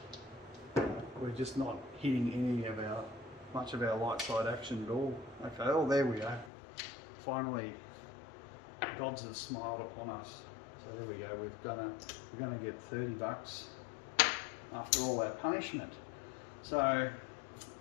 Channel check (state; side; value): drops out; right; at 6.5 s